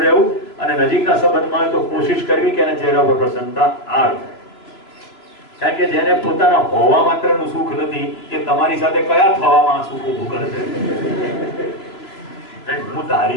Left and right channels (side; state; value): right; late; 3.0 ms